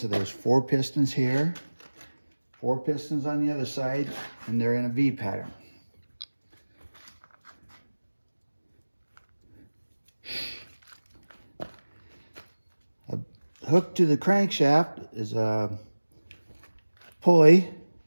there's 4 pistons here, 4 pistons on the other side, and they're in a V pattern. Hooked to the crankshaft is a pulley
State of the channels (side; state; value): both; inverted; correlation -1.00